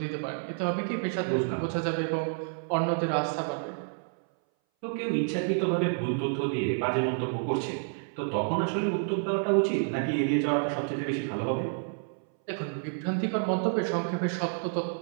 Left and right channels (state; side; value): silent; left; 58 dB below the other